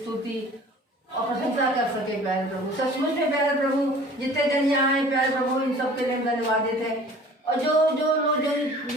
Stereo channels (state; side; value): normal; both; correlation 0.47